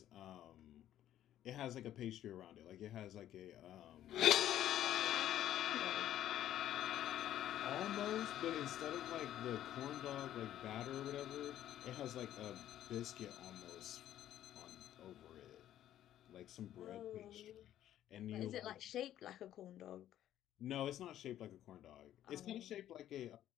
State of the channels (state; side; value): quieter; right; 12.0 dB